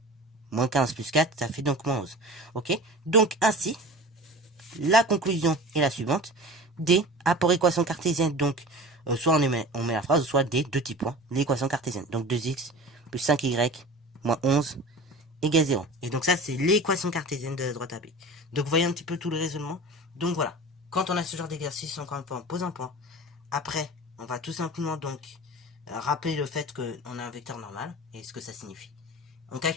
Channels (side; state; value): both; normal; correlation 0.36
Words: Moins 15 plus 4, ça fait donc moins 11. Ok. Donc ainsi, la conclusion est la suivante. D a pour équation cartésienne, donc soit on met la phrase, soit D, deux petits points, l'équation cartésienne. Donc 2x plus 5y moins 11 égale 0. Et donc ça, c'est l'équation cartésienne de la droite AB. Donc vous voyez un petit peu tout le raisonnement. Donc voilà, quand on a ce genre d'exercice, encore une fois, on pose un point. Après, on va tout simplement donc rappeler le fait qu'on a un vecteur normal et ce que ça signifie. On